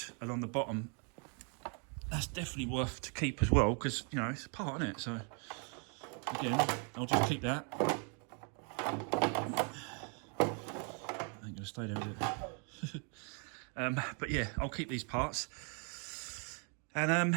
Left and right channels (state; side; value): quieter; left; 39.2 dB